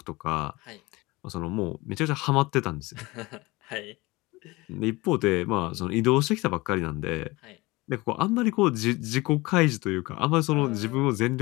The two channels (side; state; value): right; quieter; 22.2 dB